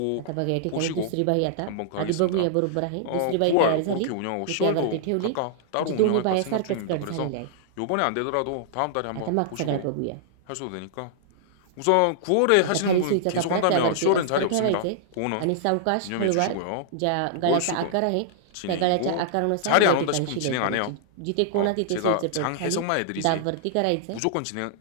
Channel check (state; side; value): different; both; correlation -0.01